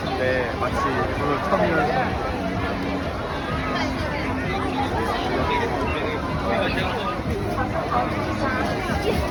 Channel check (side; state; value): both; identical; correlation 1.00